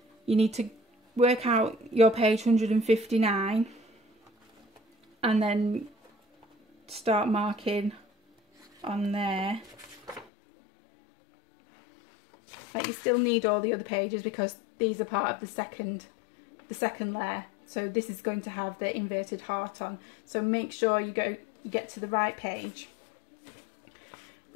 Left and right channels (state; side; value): drops out; right; at 10.2 s